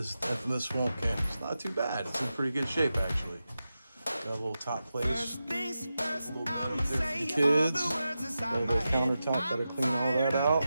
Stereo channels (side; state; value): both; inverted; correlation -0.91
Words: infamous swamp camp. It's not too bad. It's in pretty good shape, actually. Got a little top place, a little bit right there for the kids. Got a little countertop, gotta clean all that out.